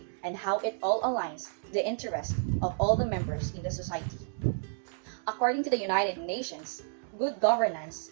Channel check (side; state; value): left; silent; digital silence